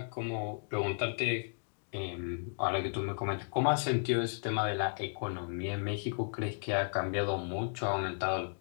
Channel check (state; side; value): silent; right; digital silence